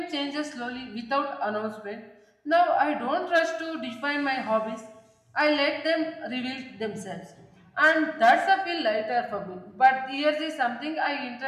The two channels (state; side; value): identical; both; correlation 1.00